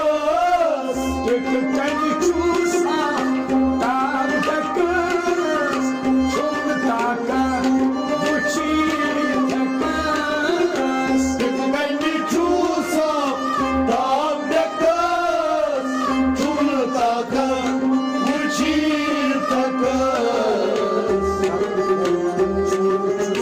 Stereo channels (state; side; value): identical; both; correlation 1.00